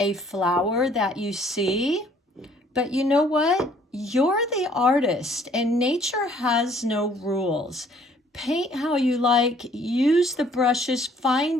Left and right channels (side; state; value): both; normal; correlation 0.60